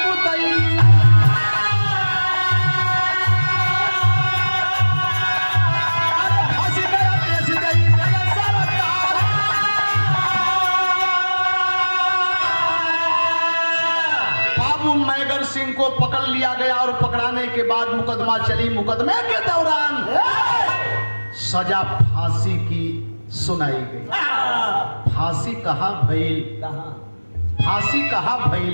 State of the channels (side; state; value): both; inverted; correlation -1.00